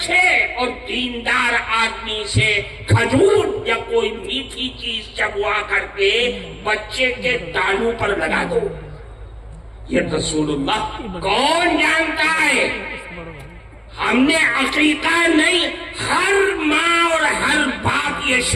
اور دیندار آدمی سے کھجور یا کوئی میٹھی چیز چبوا کر کے بچے کے تانوں پر لگا دو۔ یہ رسول اللہ کون جانتا ہے؟ ہم نے عقیقہ نہیں، ہر ماں اور ہر باپ یہ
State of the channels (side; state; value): both; identical; correlation 1.00